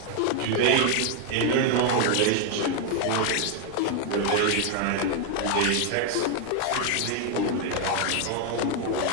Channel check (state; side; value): different; both; correlation 0.00